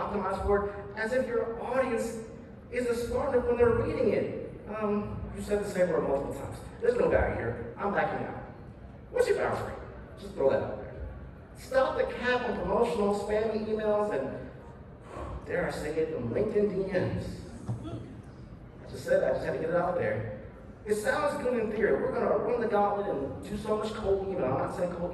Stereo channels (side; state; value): both; identical; correlation 1.00